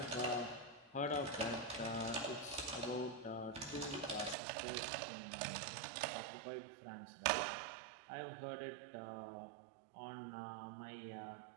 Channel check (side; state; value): left; drops out; at 4.4 s